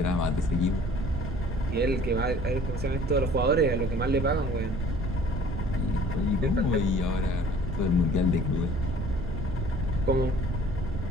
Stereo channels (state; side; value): noise; right; rumble, 4 dB below the sound